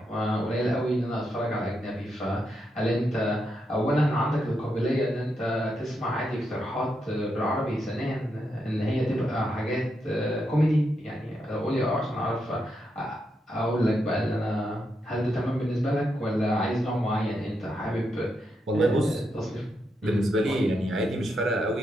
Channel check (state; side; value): normal; both; correlation 0.82